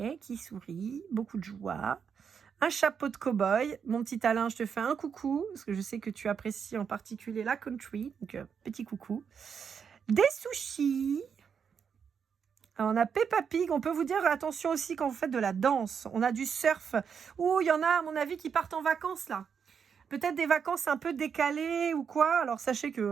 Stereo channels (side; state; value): left; quieter; 6.9 dB